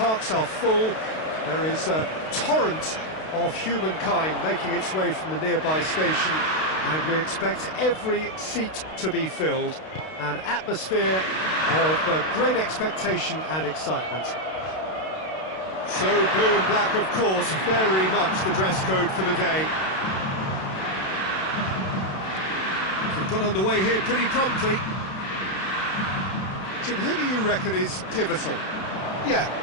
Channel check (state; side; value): late; right; 32 ms